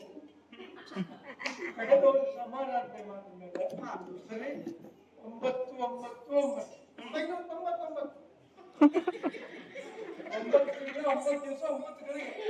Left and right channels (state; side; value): identical; both; correlation 1.00